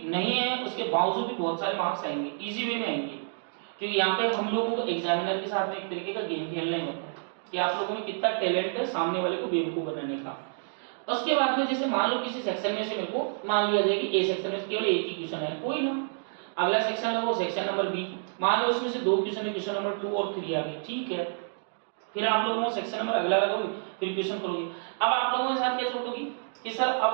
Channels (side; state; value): left; silent; digital silence